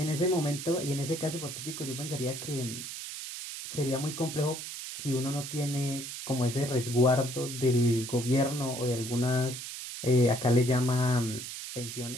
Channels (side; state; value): right; noise; hiss, 8 dB below the sound